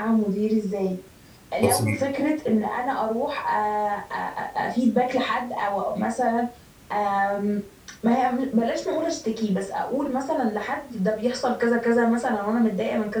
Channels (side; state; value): both; identical; correlation 1.00